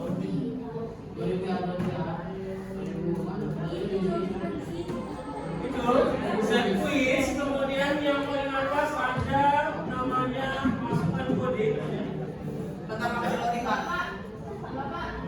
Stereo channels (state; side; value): identical; both; correlation 1.00